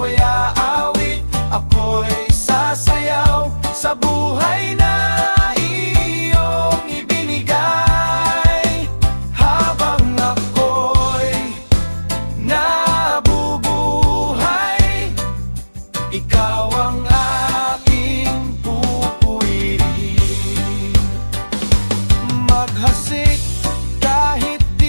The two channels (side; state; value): both; inverted; correlation -1.00